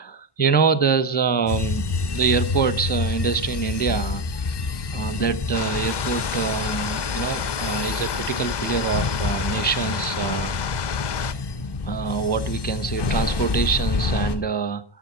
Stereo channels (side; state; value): right; late; 1.2 ms